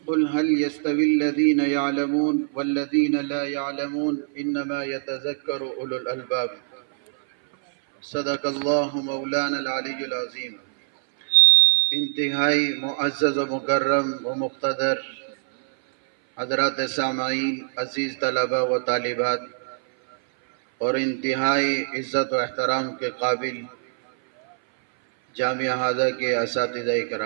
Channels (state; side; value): silent; left; 60 dB below the other